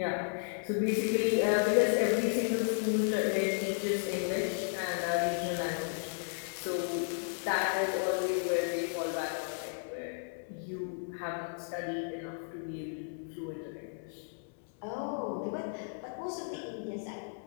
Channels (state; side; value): silent; right; 55 dB below the other